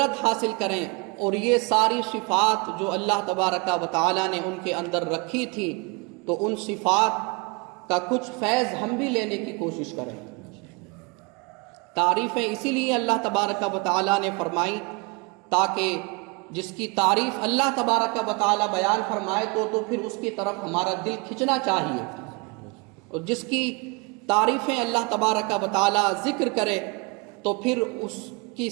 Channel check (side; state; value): left; quieter; 29.6 dB